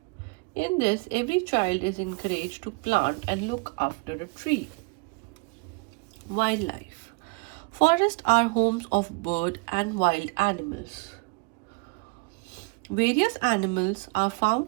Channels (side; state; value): left; quieter; 29.4 dB